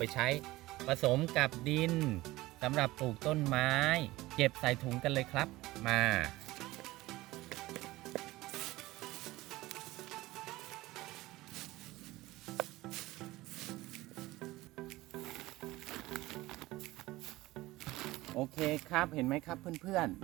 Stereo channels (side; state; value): left; quieter; 18.6 dB